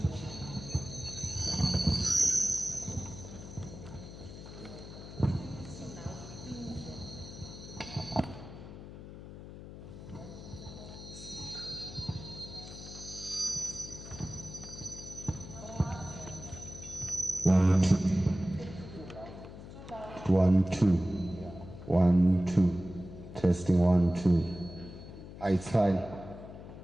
One, two. 1, 2. Testing 1, 2. It's fine.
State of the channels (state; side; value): noise; left; hum, 13 dB below the sound